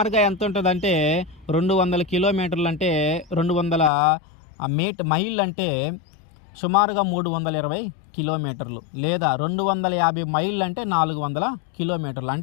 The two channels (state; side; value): drops out; right; at 3.9 s